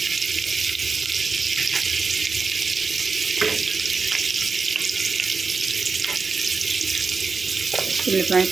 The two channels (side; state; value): left; quieter; 4.6 dB